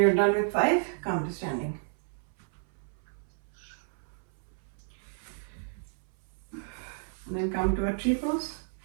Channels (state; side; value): silent; left; 57 dB below the other